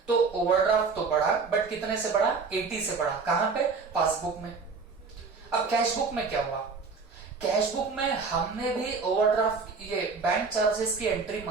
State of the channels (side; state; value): left; quieter; 4.7 dB